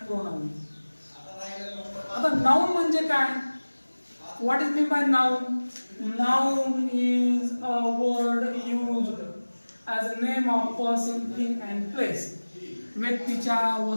आता नाउन म्हणजे काय? What is mean by noun? Noun is a word used as a name of person, thing and place. व्यक्तीच्या,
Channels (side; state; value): both; inverted; correlation -1.00